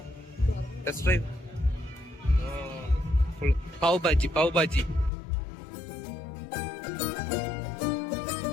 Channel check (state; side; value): drops out; right; at 5.1 s